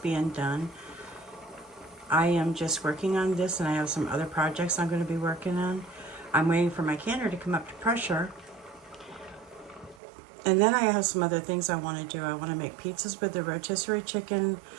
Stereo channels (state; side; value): drops out; left; at 10.0 s